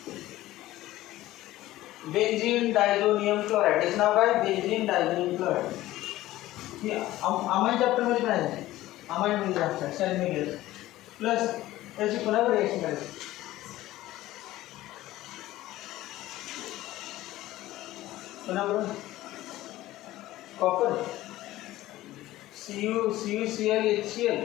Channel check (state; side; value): quieter; right; 16.0 dB